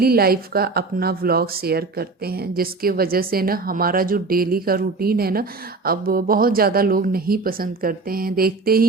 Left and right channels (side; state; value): left; quieter; 3.8 dB